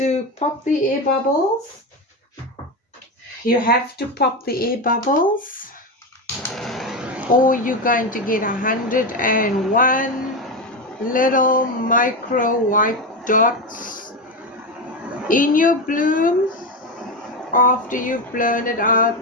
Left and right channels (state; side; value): normal; both; correlation 0.15